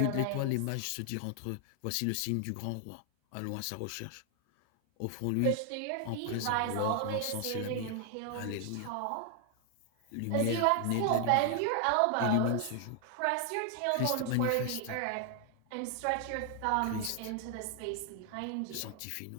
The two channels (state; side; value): different; both; correlation 0.00